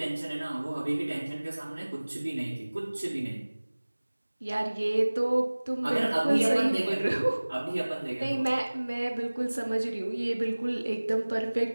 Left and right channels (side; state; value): both; inverted; correlation -1.00